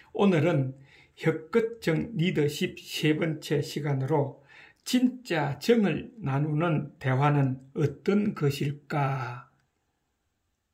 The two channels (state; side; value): identical; both; correlation 1.00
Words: 오늘은 혁끝정 리더십 세 번째 시간으로 진짜 정을 나누는 대화는 어떤 것일까?